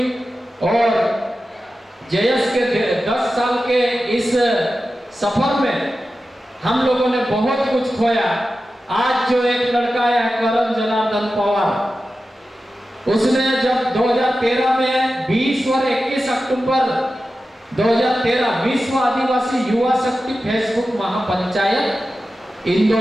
और जेएस के 10 साल के इस सफर में हम लोगों ने बहुत कुछ खोया। आज जो एक लड़का है करण जनार्दन पवार, उसने जब 2013 में 20 और 21 अक्टूबर 2013 विश्व आदिवासी युवा शक्ति फेसबुक महापंचायत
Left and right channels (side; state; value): both; normal; correlation 0.93